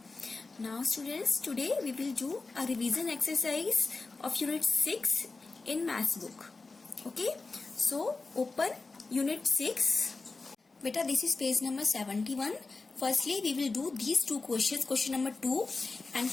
Now students, today we will do a revision exercise of unit 6 in maths book. Okay, so open unit 6. Beta, this is page number 71. Firstly, we will do these two questions, question number 2 and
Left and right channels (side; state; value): right; quieter; 3.8 dB